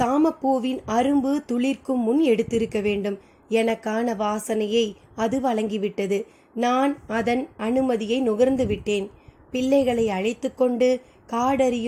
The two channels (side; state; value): both; identical; correlation 1.00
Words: அரும்பு துளிர்க்கும் முன் எடுத்திருக்க வேண்டும். எனக்கான வாசனையை அது வழங்கிவிட்டது. நான் அதன் அனுமதியை நுகர்ந்து விட்டேன். பிள்ளைகளை அழைத்து கொண்டு